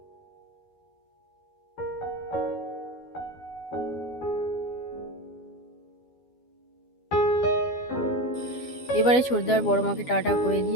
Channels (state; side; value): late; right; 12 ms